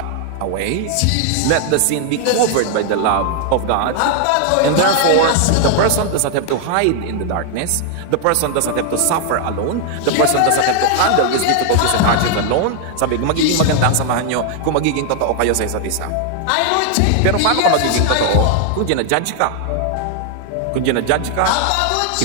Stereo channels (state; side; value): different; both; correlation 0.00